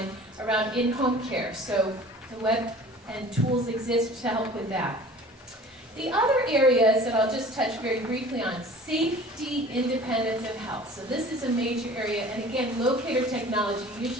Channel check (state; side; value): normal; both; correlation 0.45